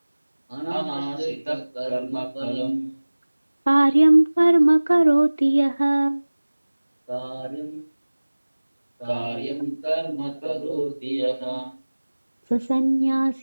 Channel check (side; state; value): both; inverted; correlation -1.00